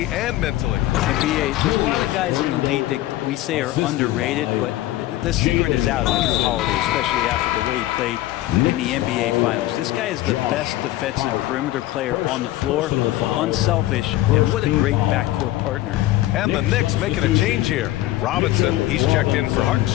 and mentally. And BA, there's a lot of guys in the league that we say are underrated, but the secret is out on Drew Holiday, especially after the way he played in the NBA Finals. This guy is the best defensive perimeter player on the floor, unselfish, and what a great backcourt partner. And the Knicks making a change here. Robinson, he's checked in for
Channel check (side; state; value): right; quieter; 15.8 dB